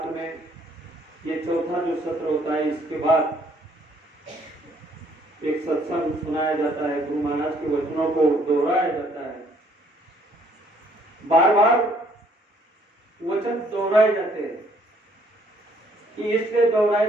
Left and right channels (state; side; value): normal; both; correlation 0.64